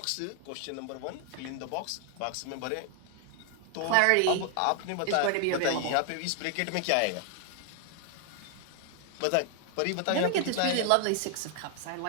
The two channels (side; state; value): both; different; correlation 0.00